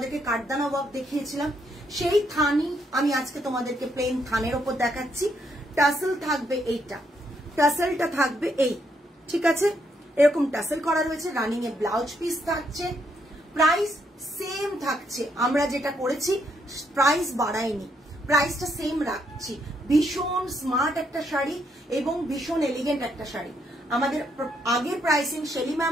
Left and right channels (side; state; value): both; normal; correlation 0.75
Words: কাঠদানা ওয়ার্ক দেখিয়েছিলাম, সেই থানই আমি আজকে তোমাদেরকে প্লেন থানের ওপর দেখাচ্ছি। টাসেল থাকবে এইটা, টাসেলটা থাকবে এই, ঠিক আছে? এরকম টাসেল করা রয়েছে, রানিং এ ব্লাউজ পিস থাকছে, প্রাইস সেম থাকছে। আমরা যেটা করেছি প্রাইস বাড়াইনি, প্রাইসটা সেম রাখছি। ভীষণ স্মার্ট একটা শাড়ি এবং ভীষণ এলিগেন্ট একটা শাড়ি। আমাদের আগের প্রাইসিং, শেলি